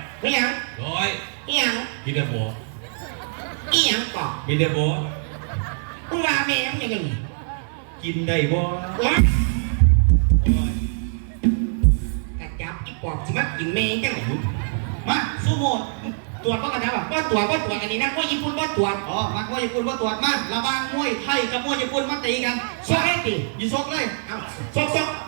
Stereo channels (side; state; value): left; silent; 63 dB below the other